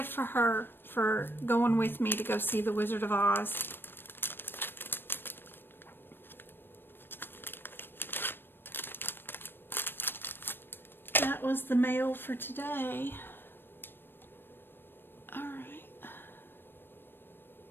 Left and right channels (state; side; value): late; right; 0.098 ms